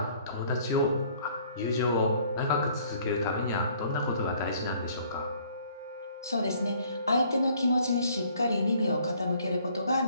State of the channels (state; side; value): inverted; both; correlation -0.60